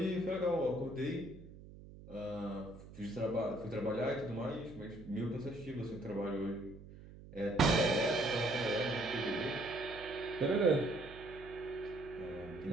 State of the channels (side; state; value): right; noise; hum, 17 dB below the sound